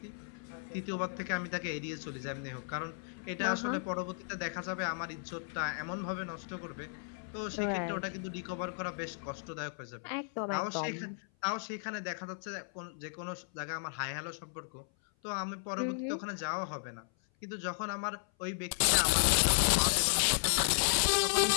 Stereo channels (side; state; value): right; silent; 55 dB below the other